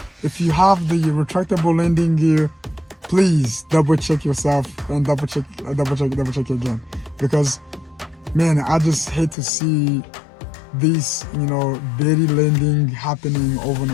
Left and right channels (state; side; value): drops out; right; at 9.3 s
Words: If you have the retractable landing gear, please double check yourself and double check again, because man, I just hate to see this belly landing happening over and